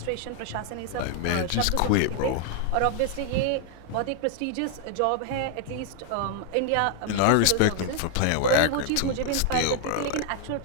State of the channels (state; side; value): different; both; correlation 0.00